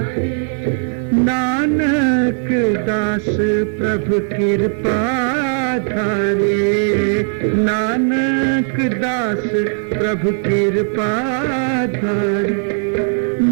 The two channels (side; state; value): left; silent; 65 dB below the other